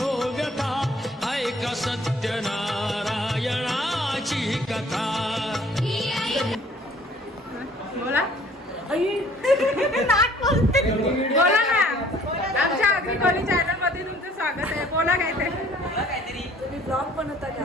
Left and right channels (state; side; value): normal; both; correlation 0.55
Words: व्यथा, ऐक सत्यनारायणाची कथा. बोला बोला ना. आमच्या आगरी कोली चॅनल मध्ये तुमचं स्वागत आहे. बोला काय ते तुम्ही ब्लॉग बनवता का?